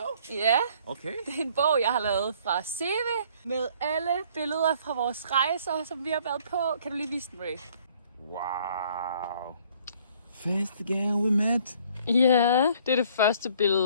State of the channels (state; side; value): inverted; both; correlation -0.59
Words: Ja, Okay. det er en bog, jeg har lavet fra CV med alle billeder fra vores rejser, som vi har været på. Kan du lige vise den, Ray? Wow. Første gang we met. Ja, det er det første